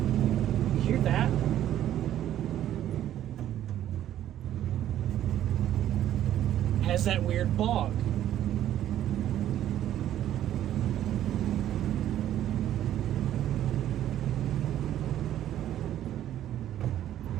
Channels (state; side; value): quieter; left; 11.8 dB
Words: You hear that? Has that weird bog.